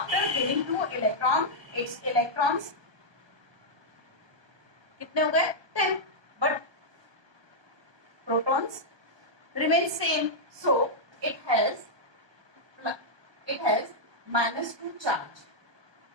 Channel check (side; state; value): left; late; 1.2 ms